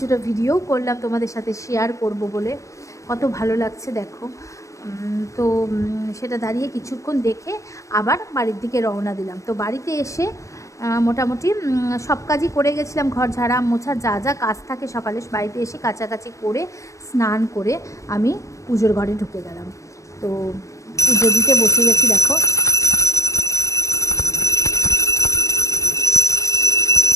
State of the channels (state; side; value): late; right; 0.15 ms